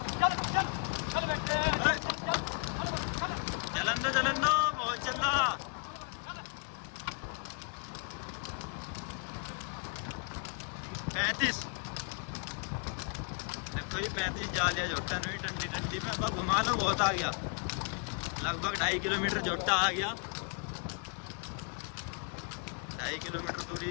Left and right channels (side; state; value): right; quieter; 36.1 dB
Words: चलन दो बहुत चल रहा। पैंतीस देखो ये 35 जा लिया जोटा नहीं, ठंडी ठंडी में अब घुमा लो, बहुत आ गया, लगभग 2.5 किलोमीटर जोटा आ गया, 2.5 किलोमीटर